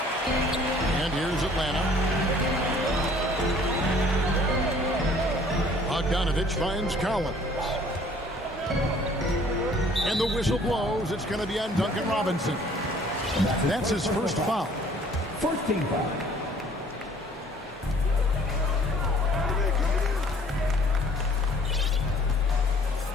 And here's Atlanta. Bogdanovich finds Collins. And the whistle blows. It's going to be on Duncan Robinson. That's his first foul. First team foul.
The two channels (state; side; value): normal; both; correlation 0.55